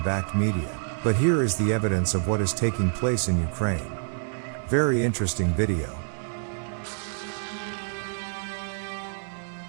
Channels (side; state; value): left; silent; digital silence